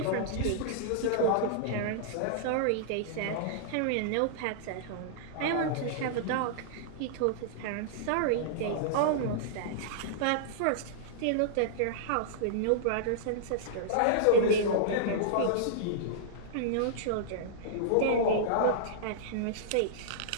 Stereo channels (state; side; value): different; both; correlation -0.02